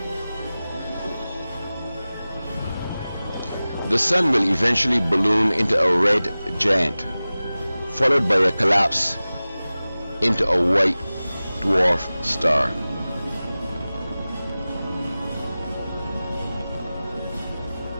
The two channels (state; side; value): inverted; both; correlation -0.97